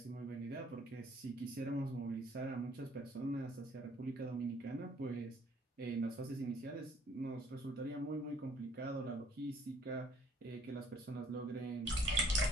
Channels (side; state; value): both; normal; correlation 0.60